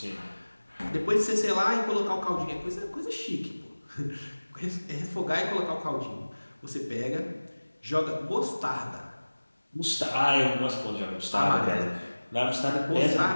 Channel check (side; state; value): both; inverted; correlation -1.00